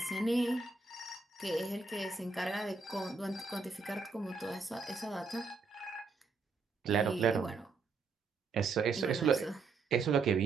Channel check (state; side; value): quieter; left; 4.4 dB